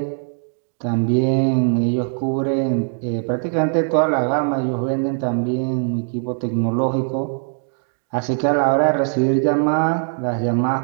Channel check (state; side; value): silent; left; 63 dB below the other